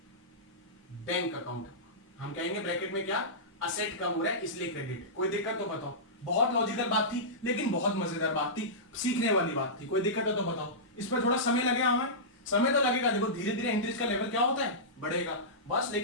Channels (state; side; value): normal; both; correlation -0.16